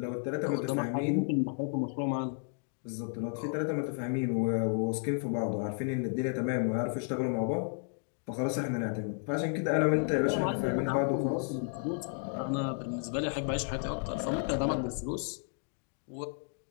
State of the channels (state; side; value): silent; right; 56 dB below the other